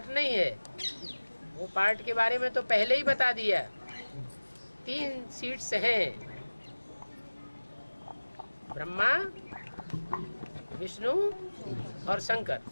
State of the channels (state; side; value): inverted; both; correlation -1.00